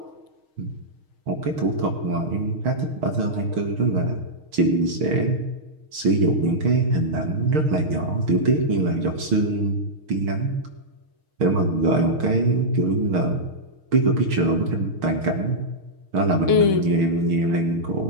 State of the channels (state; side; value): late; left; 6.4 ms